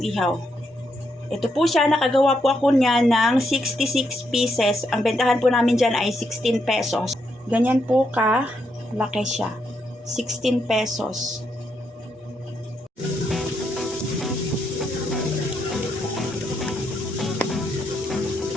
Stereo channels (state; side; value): normal; both; correlation 0.79